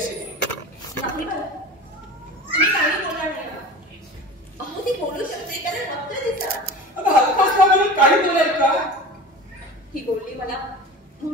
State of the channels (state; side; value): normal; both; correlation 0.35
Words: नाही मला, तुम्ही काही बोलणार नाही ना. अहो ती बोलू शकते कारण फक्त तिचा. अगं हलकाच म्हणून काही बोलाय का? ही बोलली मला